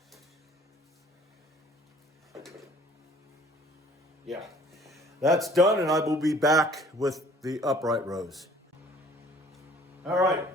Yeah, that's done, and I will be back with the upright rows. All right,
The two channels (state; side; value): normal; both; correlation 0.54